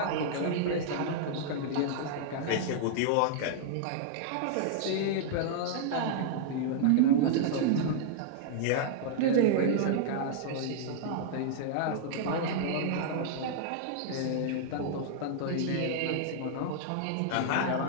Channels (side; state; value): both; different; correlation -0.01